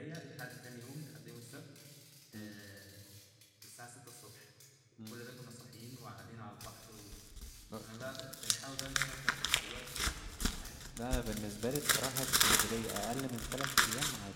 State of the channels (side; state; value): both; identical; correlation 1.00